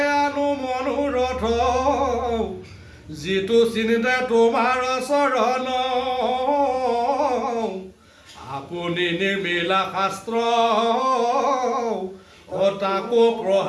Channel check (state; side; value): identical; both; correlation 1.00